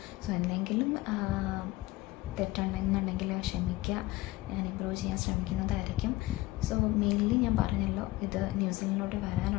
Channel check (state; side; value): quieter; right; 18.6 dB